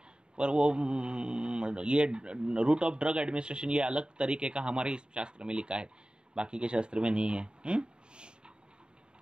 पर वो ये रूट ऑफ ड्रग एडमिनिस्ट्रेशन ये अलग तरीके का हमारे इस शास्त्र में लिखा है, बाकी के शास्त्र में नहीं है।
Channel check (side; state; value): left; late; 0.050 ms